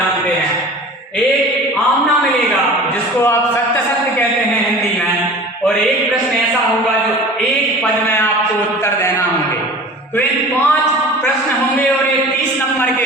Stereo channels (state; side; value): normal; both; correlation 0.40